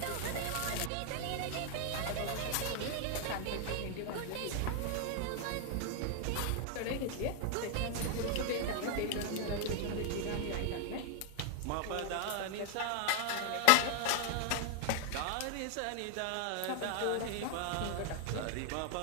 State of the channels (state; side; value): different; both; correlation 0.00